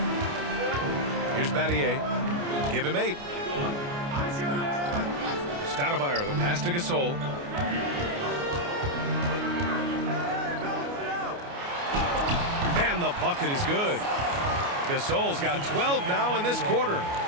Here's Battier. Give him 8. Stoudemire, the pass to Gasol. And the bucket is good. Gasol's got 12 now in this quarter.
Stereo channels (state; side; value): late; left; 29 ms